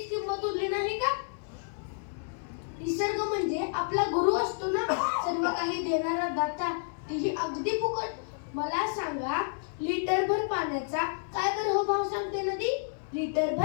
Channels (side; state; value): right; silent; digital silence